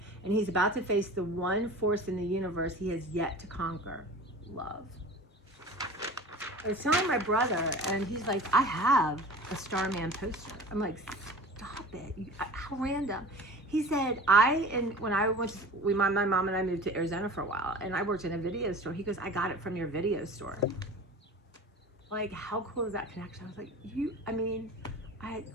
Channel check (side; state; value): both; normal; correlation 0.39